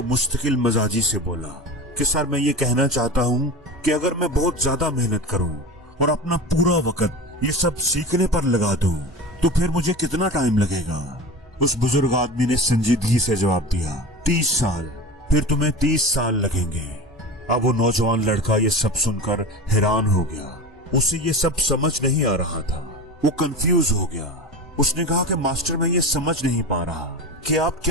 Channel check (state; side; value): normal; both; correlation 0.30